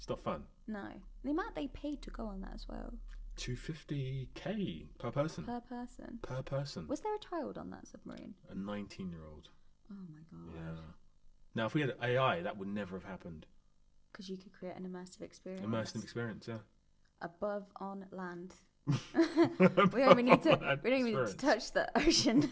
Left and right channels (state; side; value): identical; both; correlation 1.00